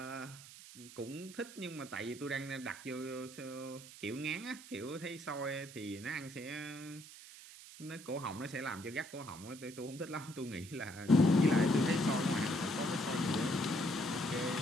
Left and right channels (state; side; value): noise; right; hiss, 16 dB below the sound